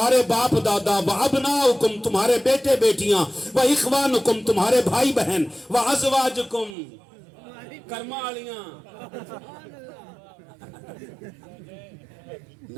باپ دادا, و ابناؤکم تمہارے بیٹے بیٹیاں, و اخوانکم تمہارے بھائی بہن, و ازواجکم کرمالیاں,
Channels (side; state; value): left; drops out; at 6.8 s